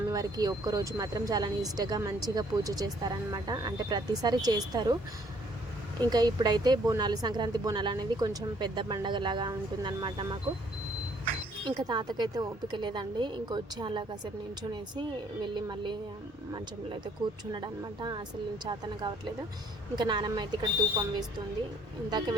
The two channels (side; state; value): both; normal; correlation 0.63